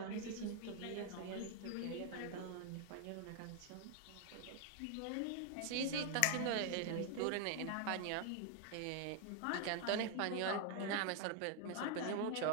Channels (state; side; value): different; both; correlation 0.00